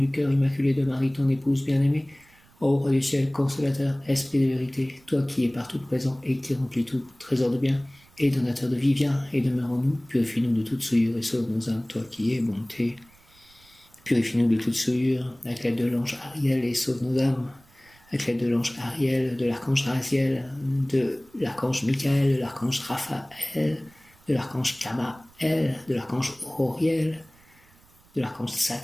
cœur immaculé de Marie, ton épouse bien-aimée, ô roi du ciel, consolateur, esprit de vérité, toi qui es partout présent et qui remplis tout, trésor de bien et donateur de vie, viens et demeure en nous, purifie-nous de toute souillure et sauve nos âmes, toi qui es bonté. Purifie-nous de toute souillure, avec l'aide de l'ange Ariel, et sauve nos âmes, avec l'aide de l'ange Ariel, de l'archange Raziel, de l'archange Michael, de l'archange Raphaël, de l'archange Kamaël, El, de l'archange Auriel, de l'archange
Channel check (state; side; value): noise; right; rumble, 29 dB below the sound